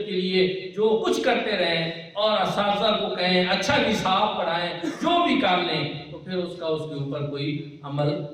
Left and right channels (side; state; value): both; identical; correlation 1.00